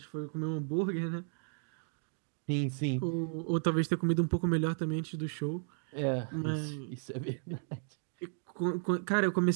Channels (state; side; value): silent; left; digital silence